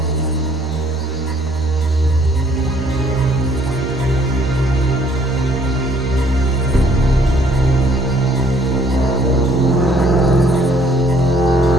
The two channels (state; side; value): normal; both; correlation 0.62